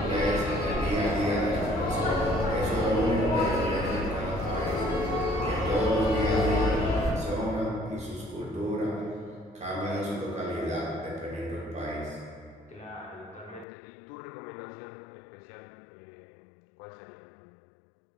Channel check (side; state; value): right; drops out; at 13.7 s